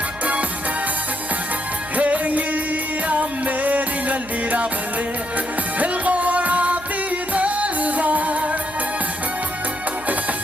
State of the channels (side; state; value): right; noise; hum, 20 dB below the sound